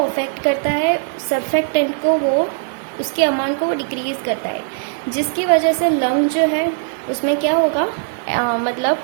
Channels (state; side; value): silent; left; digital silence